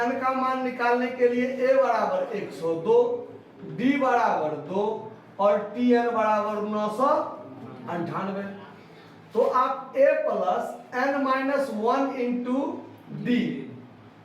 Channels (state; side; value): identical; both; correlation 1.00